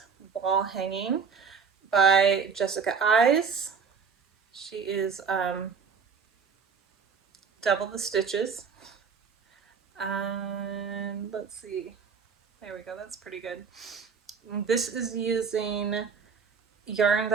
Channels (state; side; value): quieter; left; 5.8 dB